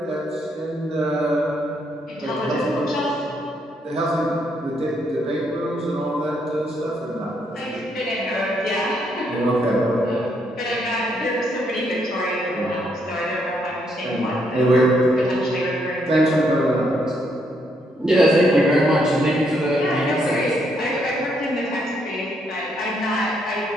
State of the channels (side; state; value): both; normal; correlation 0.74